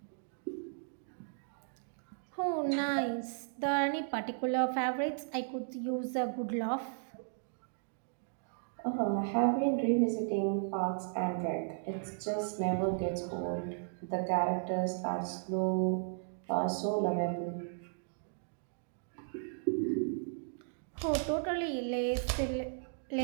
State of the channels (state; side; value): silent; left; digital silence